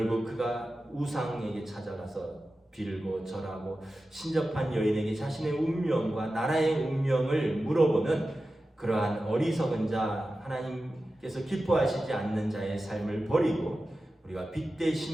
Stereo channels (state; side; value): normal; both; correlation 0.94